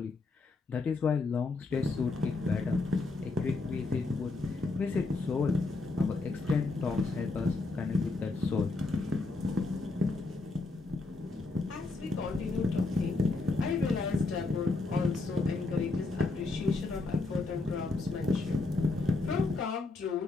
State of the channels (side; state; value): right; quieter; 3.5 dB